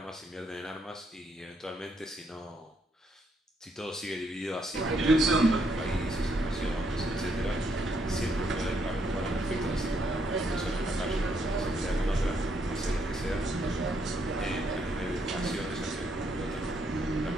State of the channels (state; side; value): normal; both; correlation 0.74